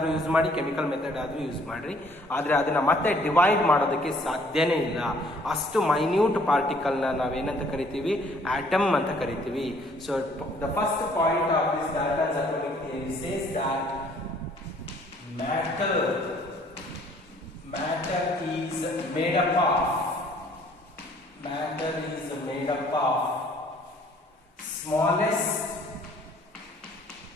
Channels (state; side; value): normal; both; correlation 0.60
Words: use ಮಾಡಿ, chemical method ಆದ್ರೂ use ಮಾಡ್ರಿ, ಆದ್ರೆ ಅದನ್ನ ಮತ್ತೆ divide ಮಾಡೋದಕ್ಕೆ ಸಾಧ್ಯನೇ ಇಲ್ಲ. ಅಷ್ಟು ಮೈನ್ಯೂಟ್ ಪಾರ್ಟಿಕಲ್ ನ ನಾವೇನಂತ ಕರಿತೀವಿ? ಆಟಮ್ ಅಂತ ಕರಿತೀವಿ. So the first point of this ಡಾಲ್ಟನ್ಸ್ atomic theory says that matter is made up of smallest